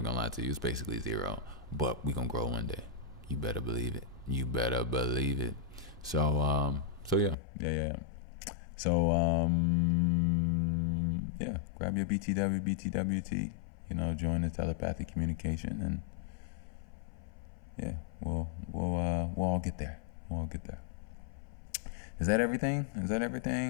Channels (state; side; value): drops out; right; at 7.4 s